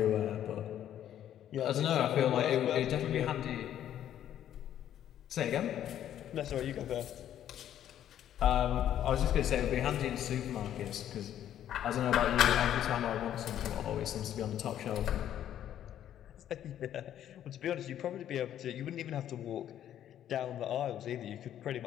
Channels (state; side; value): quieter; right; 10.9 dB